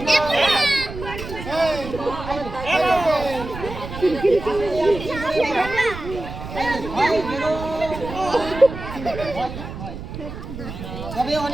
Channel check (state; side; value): noise; right; rumble, 10 dB below the sound